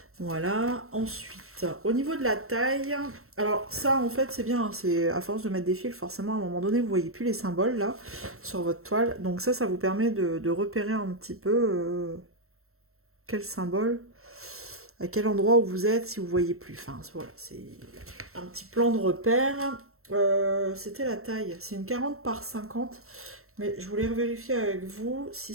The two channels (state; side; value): late; left; 0.63 ms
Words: Voilà, ensuite, au niveau de la taille, alors ça en fait c'est bien, c'est à force de mettre des fils, forcément à un moment donné vous voyez plus les symboles là sur votre toile, donc ça vous permet de repérer un petit peu quel symbole, à quel endroit où vous êtes si vous voyez plus, enfin voilà, c'est un petit plan de repère. C'était la taille, c'est une 40 par 50, mais je voulais vérifier avec vous si